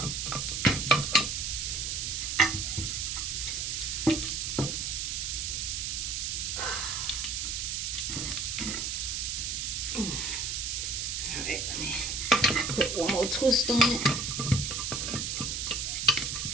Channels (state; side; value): noise; right; hiss, 1 dB below the sound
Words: Alright, let me put one more twist on it.